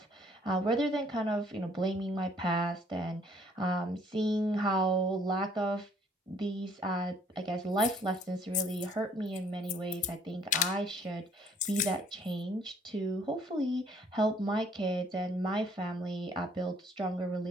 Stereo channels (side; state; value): both; normal; correlation 0.61